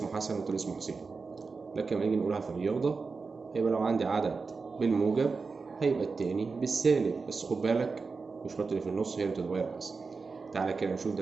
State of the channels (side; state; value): left; quieter; 4.5 dB